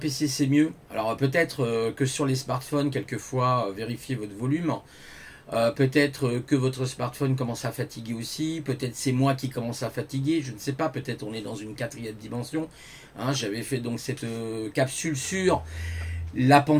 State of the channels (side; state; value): both; identical; correlation 1.00